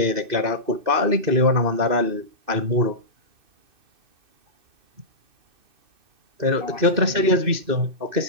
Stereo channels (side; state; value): left; late; 2.6 ms